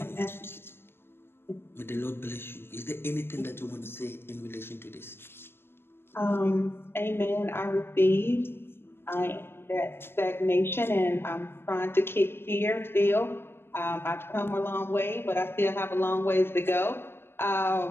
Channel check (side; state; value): right; late; 0.11 ms